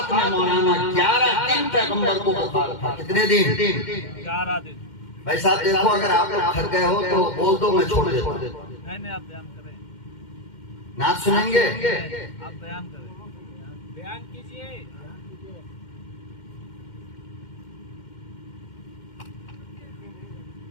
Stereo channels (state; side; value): late; right; 2.1 ms